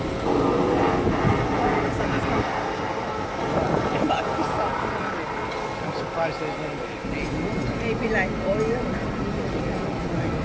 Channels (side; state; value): both; identical; correlation 1.00